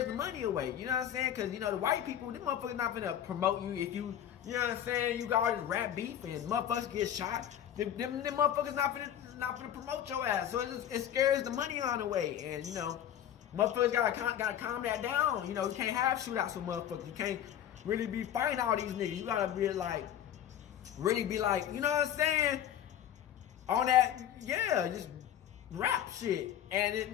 the money away. You know what I'm saying? Cause you know the white people, them motherfuckers not gonna promote you if you know what I'm saying, you got all this rap beef and motherfuckers get shot. Them motherfuckers not gonna promote your ass. So it scares the money on the way. And you know, motherfuckers gotta calm that down. You know, you can't have shootouts with motherfuckers. You can't really be fighting all these niggas. You gotta be like, really be like, you know what I'm saying? On that, yeah, just rap shit. And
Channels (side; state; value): right; quieter; 10.5 dB